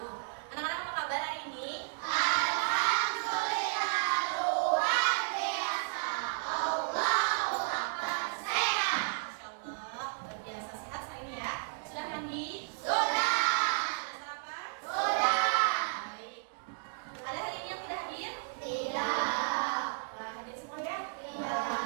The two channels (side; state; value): left; silent; digital silence